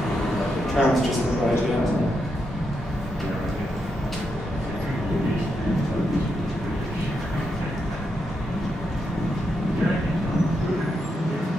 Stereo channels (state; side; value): normal; both; correlation 0.83